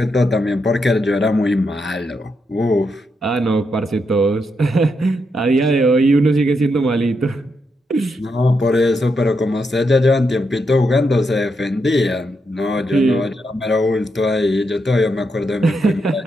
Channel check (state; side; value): normal; both; correlation 0.82